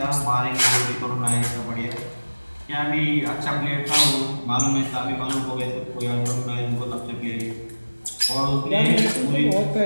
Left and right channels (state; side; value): inverted; both; correlation -1.00